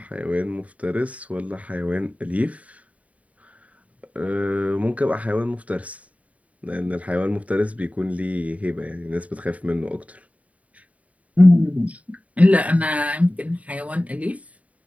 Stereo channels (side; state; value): left; late; 0.068 ms